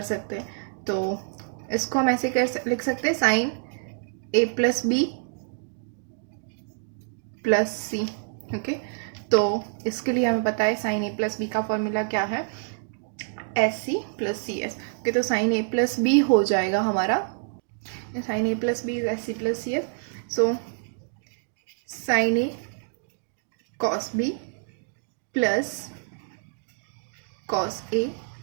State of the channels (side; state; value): left; silent; digital silence